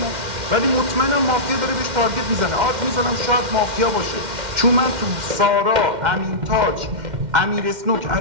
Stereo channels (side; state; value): left; late; 2.1 ms